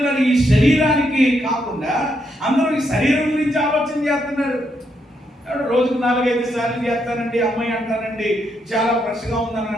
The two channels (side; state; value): both; normal; correlation 0.78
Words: ఈ శరీరానికి కాకుండా అందరూ ఈ శరీరం గురించి ఆలోచన చేస్తున్నారు. రోజుకు 4-5 సార్లు చేస్తానండి, అమ్మాయి అంటానండి, చాలా ఫ్రెష్గా ఉందని